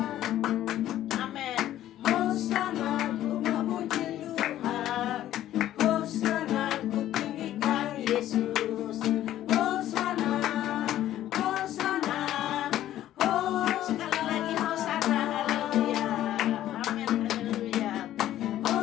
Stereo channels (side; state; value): right; quieter; 12.9 dB